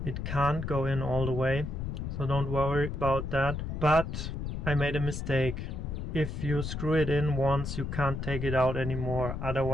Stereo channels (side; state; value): left; noise; rumble, 5 dB below the sound